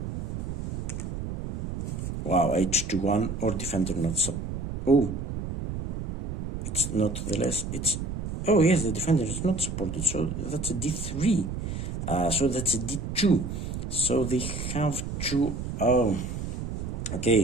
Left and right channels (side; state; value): right; noise; rumble, 4 dB below the sound